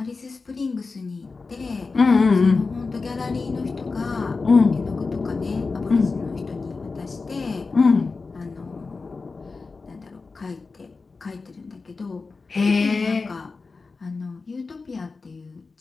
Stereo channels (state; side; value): quieter; right; 4.2 dB